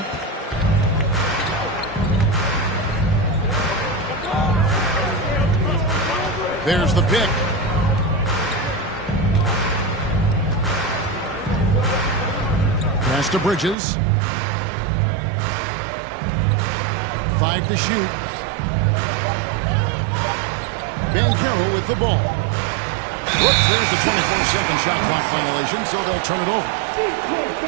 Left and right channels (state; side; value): drops out; left; at 13.8 s